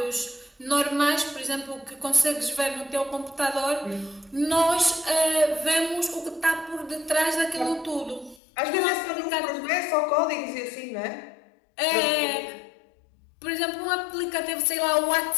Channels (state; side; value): drops out; right; at 8.4 s